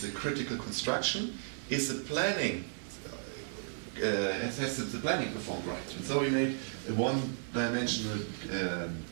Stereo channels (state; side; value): silent; left; digital silence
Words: a critical construction, is the planning has the planning performed right? And so we made a one-dimensional